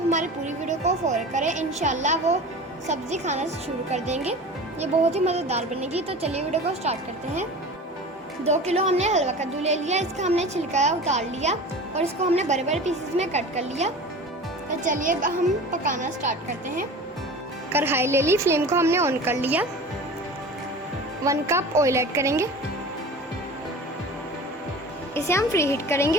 पूरी वीडियो को फॉलो करें, इंशाल्लाह वो सब्जी खाना शुरू कर देंगे। ये बहुत ही मज़ेदार बनेगी। तो चलिए वीडियो को स्टार्ट करते हैं। 2 किलो हमने हलवा कद्दू ले लिया। इसका हमने छिलका उतार लिया और इसको हमने बड़े बड़े पीसेस में कट कर लिया। तो चलिए हम पकाना स्टार्ट करते हैं। कढ़ाई ले ली, फ्लेम को हमने ऑन कर लिया। 1 कप ऑयल ऐड करेंगे, इसे हम फ्री हीट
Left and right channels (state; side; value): normal; both; correlation 0.36